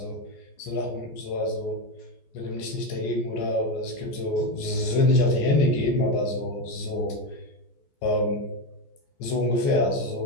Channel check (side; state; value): right; late; 14 ms